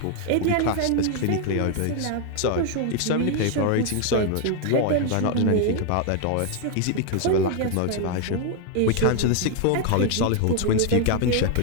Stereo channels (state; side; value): different; both; correlation 0.00